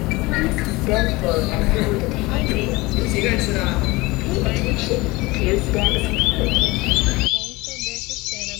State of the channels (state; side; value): quieter; right; 22.3 dB